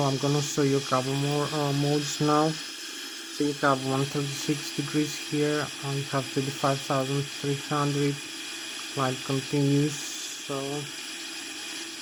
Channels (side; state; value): both; identical; correlation 1.00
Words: I'm gonna show you a couple more modes now. So you have 136 degrees here, you have 35,300, flight continues. So